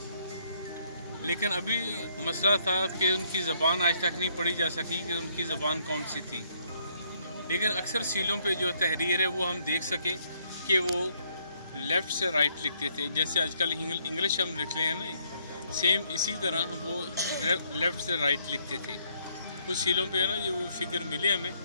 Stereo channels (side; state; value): both; inverted; correlation -0.70